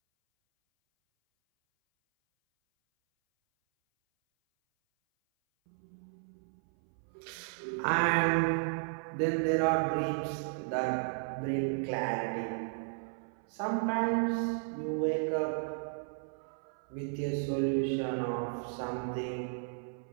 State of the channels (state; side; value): silent; left; 55 dB below the other